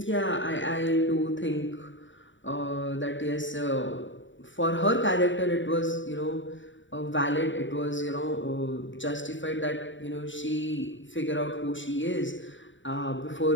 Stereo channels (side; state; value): right; late; 0.55 ms